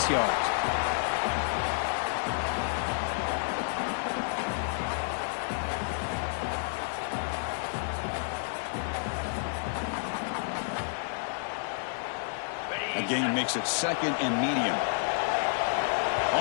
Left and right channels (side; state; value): right; silent; digital silence